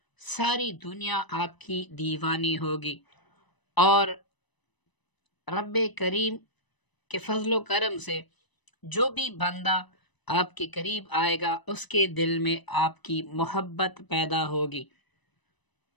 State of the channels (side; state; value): right; late; 1.0 ms